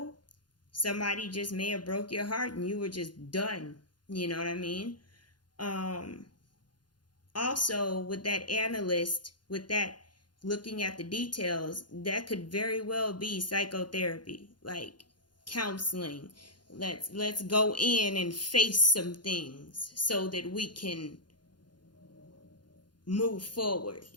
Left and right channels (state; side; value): late; right; 0.71 ms